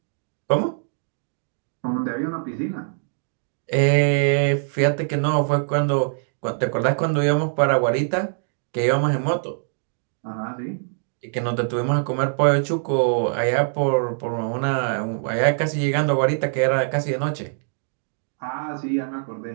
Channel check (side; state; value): left; silent; digital silence